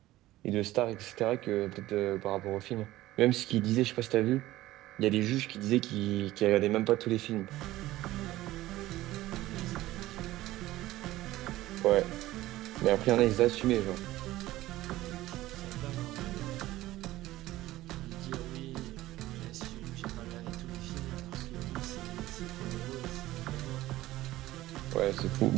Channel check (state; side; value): quieter; left; 16.3 dB